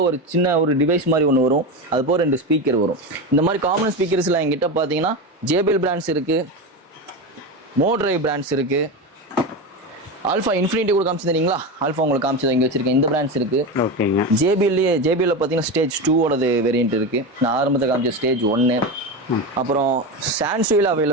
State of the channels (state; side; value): normal; both; correlation 0.19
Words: சின்ன ஒரு டிவைஸ் மாதிரி ஒன்று வரும், அது போக 2 ஸ்பீக்கர் வரும். இந்த மாதிரி காமன் ஸ்பீக்கர்ஸில் எங்கிட்ட பார்த்தீங்கன்னா JBL பிராண்ட்ஸ் இருக்குது, மோட்ரைவ் பிராண்ட்ஸ் இருக்குது, ஆல்ஃபா இன்ஃபினிட்டி கூட காமிச்சிருந்தீங்களா, ஆல்ஃபா உங்களுக்கு காமிச்சது இங்கே வச்சிருக்கேன். இந்த பிராண்ட்ஸ் இருக்கு. ஓகேங்க. JBL பார்த்தீங்கன்னா ஸ்டேஜ் 2ஓடது வேரியன்ட் இருக்கு. நான் ஆரம்பத்தில் காமிச்ச ஸ்டேஜ் 1. அப்புறம் சான்சுவில்